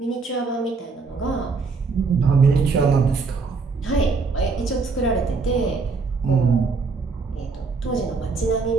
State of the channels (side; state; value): left; quieter; 4.4 dB